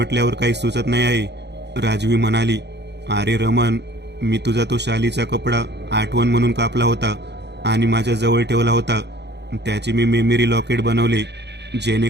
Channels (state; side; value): late; left; 0.50 ms